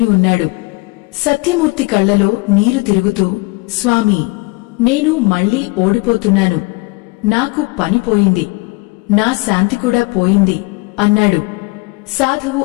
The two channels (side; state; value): right; quieter; 25.8 dB